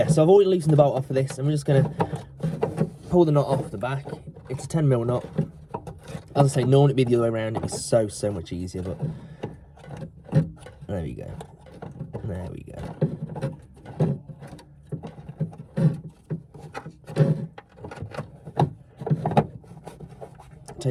so I've already loosened the bolt off for this, and we're just going to pull the knot off the back. It's a 10mm knot. As I say, normally it'd be the other way around. It'd be so much easier, but there we go. There we go.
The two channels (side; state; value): both; identical; correlation 1.00